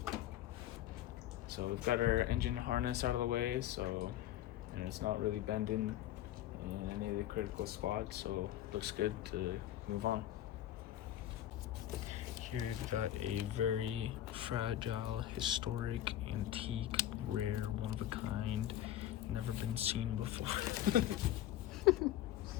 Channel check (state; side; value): quieter; right; 12.7 dB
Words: So we've got our engine harness out of the way, so and it's not really bending in any of the critical spots, so it looks good to move on. Here we've got a very fragile, historic, antique, rare, one of a kind, never been seen before.